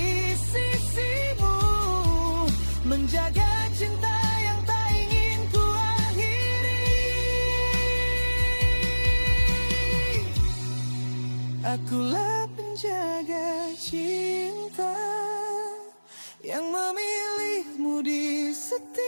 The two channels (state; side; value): inverted; both; correlation -1.00